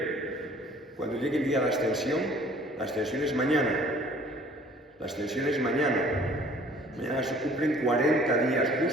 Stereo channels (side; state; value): both; normal; correlation 0.54